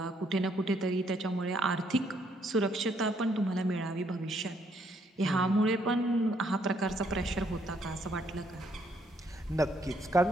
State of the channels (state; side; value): normal; both; correlation 0.70